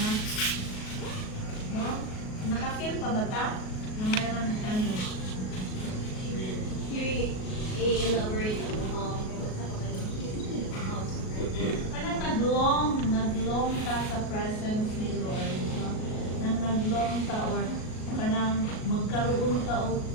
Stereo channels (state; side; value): late; right; 37 ms